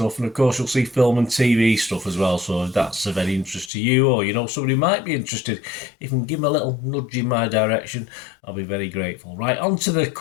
And of course, you'll see film and TV stuff as well. So if that's of any interest to you, or you know somebody who might be interested, if you can give them a little nudge in my direction, I'll be very grateful. Right, on to the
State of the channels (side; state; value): right; drops out; at 3.7 s